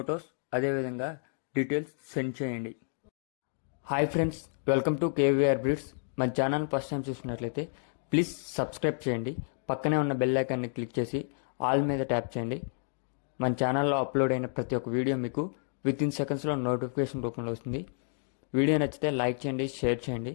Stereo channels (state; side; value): silent; right; digital silence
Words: అదేవిధంగా డీటెయిల్స్ సెండ్ చేయండి. Hi friends, welcome to KVR breeds. మన ఛానల్ ఫస్ట్ టైం చూసినట్లయితే ప్లీజ్ సబ్స్క్రైబ్ చేయండి. పక్కనే ఉన్న బెల్ ఐకాన్ని క్లిక్ చేసి ఆల్ మీద ట్యాప్ చేయండి. మన ఛానల్లో అప్లోడ్ అయిన ప్రతి ఒక్క వీడియో మీకు వితిన్ సెకండ్స్లో నోటిఫికేషన్ రూపంలో వస్తుంది. వీడియో నచ్చితే లైక్ చేయండి, షేర్ చేయండి.